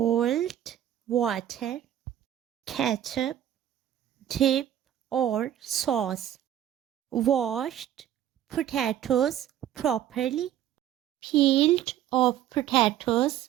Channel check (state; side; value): quieter; left; 11.4 dB